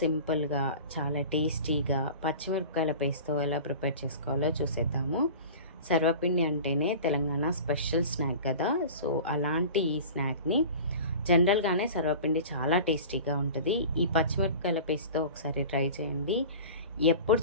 చాలా టేస్టీగా పచ్చిమిరపకాయల పేస్ట్తో ఎలా ప్రిపేర్ చేసుకోవాలో చూసేద్దాము. సర్వపిండి అంటేనే తెలంగాణ స్పెషల్ స్నాక్ కదా. సో అలాంటి ఈ స్నాక్ని జనరల్గానే సర్వపిండి చాలా టేస్టీగా ఉంటుంది. ఈ పచ్చిమిరపకాయల పేస్ట్తో ఒకసారి ట్రై చేయండి. ఎప్పుడు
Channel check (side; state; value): both; inverted; correlation -0.37